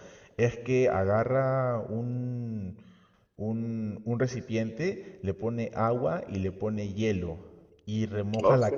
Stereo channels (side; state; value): both; identical; correlation 1.00